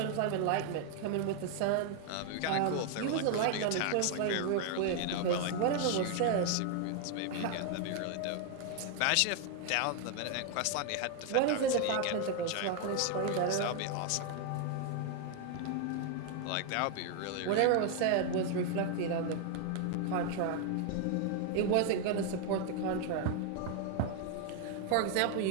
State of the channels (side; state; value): both; different; correlation 0.00